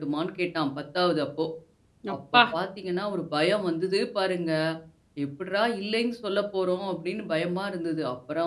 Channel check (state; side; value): identical; both; correlation 1.00